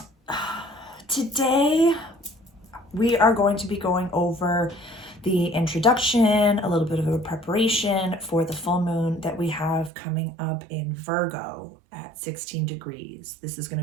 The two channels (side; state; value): left; drops out; at 9.9 s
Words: Today, we are going to be going over the introduction, a little bit of a preparation for the full moon that we have coming up in Virgo at 16 degrees. This is going